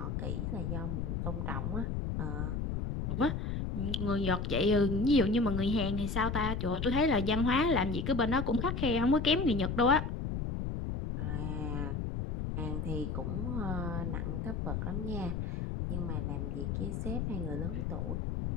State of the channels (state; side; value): noise; left; rumble, 2 dB below the sound